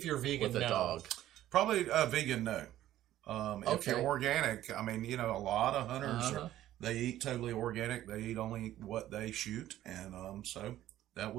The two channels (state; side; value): quieter; left; 13.4 dB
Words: you're vegan, with a no. dog? Probably vegan, no. If Okay. you're organic, I mean, you know, a lot of hunters, Uh-huh. they eat totally organic. They eat only what they shoot. And so that